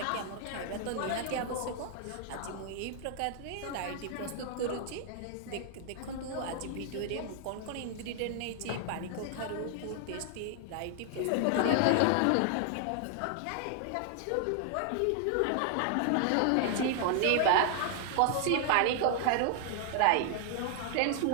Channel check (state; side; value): different; both; correlation 0.00